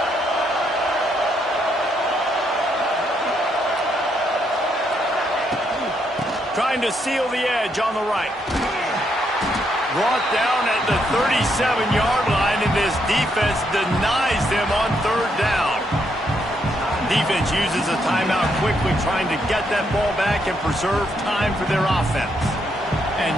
Trying to seal the edge on the right. Brought down at the 37-yard line, and this defense denies them on third down. Defense uses a timeout quickly, trying to get that ball back and preserve time for their offense. And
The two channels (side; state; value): both; normal; correlation 0.76